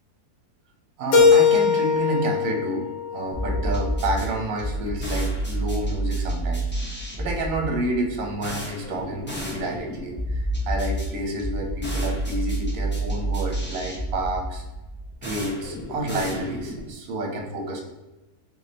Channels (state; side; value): normal; both; correlation 0.16